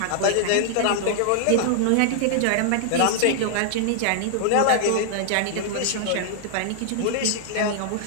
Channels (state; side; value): different; both; correlation -0.01